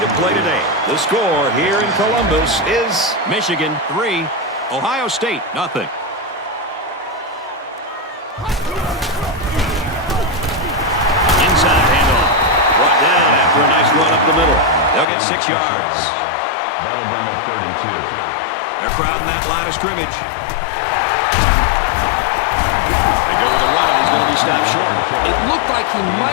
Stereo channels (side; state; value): right; drops out; at 15.1 s